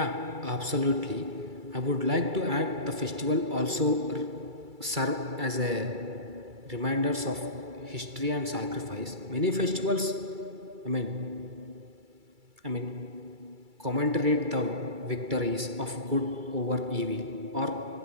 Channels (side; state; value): left; late; 2.3 ms